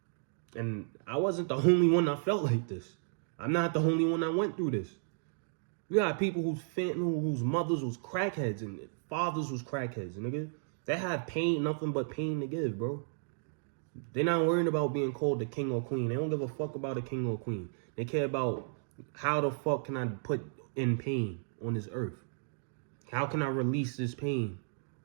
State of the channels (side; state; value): left; silent; digital silence